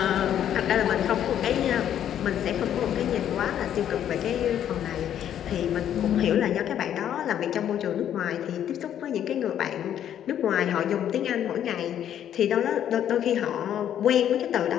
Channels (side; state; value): right; quieter; 10.2 dB